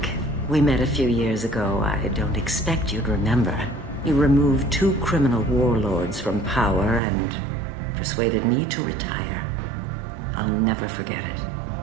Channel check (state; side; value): drops out; left; at 7.0 s